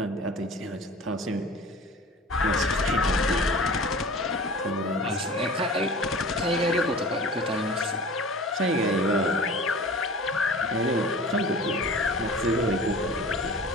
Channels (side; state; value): both; normal; correlation 0.40